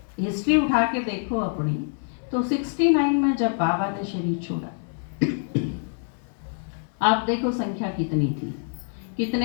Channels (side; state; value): right; silent; 61 dB below the other